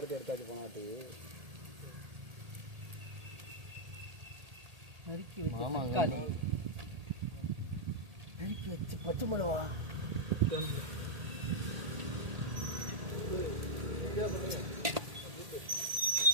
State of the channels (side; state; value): left; late; 1.8 ms